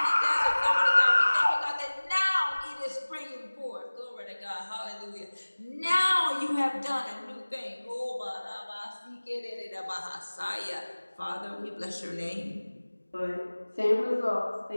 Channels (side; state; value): both; inverted; correlation -1.00